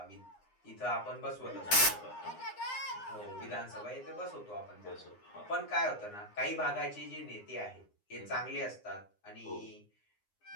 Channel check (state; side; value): late; right; 9.8 ms